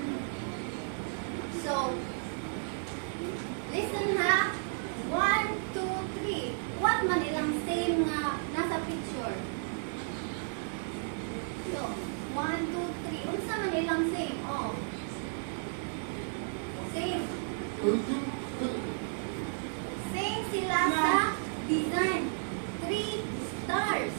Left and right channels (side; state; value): left; silent; digital silence